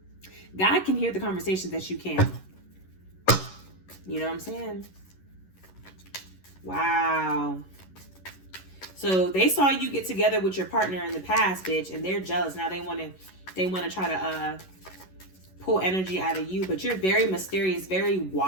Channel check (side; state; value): right; late; 11 ms